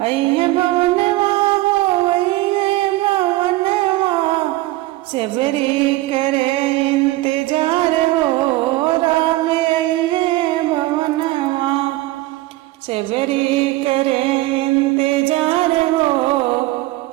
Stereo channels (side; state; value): left; quieter; 18.5 dB